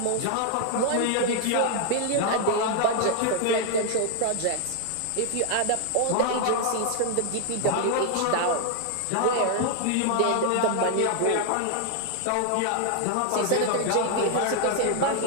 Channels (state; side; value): different; both; correlation 0.00